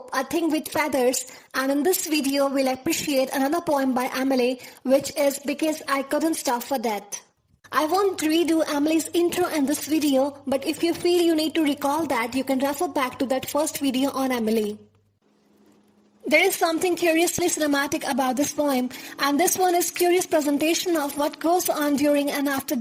A Thing with Feathers. And in this video, we'll appreciate another poem by Emily, which is Because I Couldn't Stop for Death. I won't redo Emily's intro in this video, but if you feel you need to recall that, you can refer back to that first video on Emily. There is something curiously cinematic about this poem, and this one is curious presentation of what goes on during and after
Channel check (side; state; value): both; identical; correlation 1.00